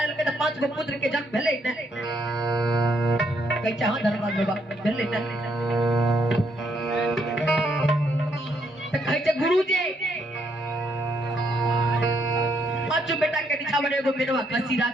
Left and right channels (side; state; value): both; normal; correlation 0.74